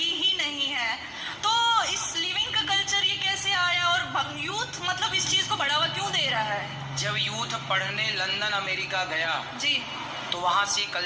ही नहीं है। तो इस लिविंग का कल्चर ये कैसे आया और यूथ मतलब इस चीज को बढ़ावा क्यों दे रहा है? जब यूथ पढ़ने लंदन अमेरिका गया जी, तो वहाँ से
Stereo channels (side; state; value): both; identical; correlation 1.00